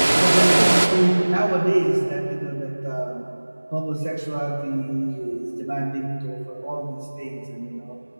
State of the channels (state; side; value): inverted; both; correlation -1.00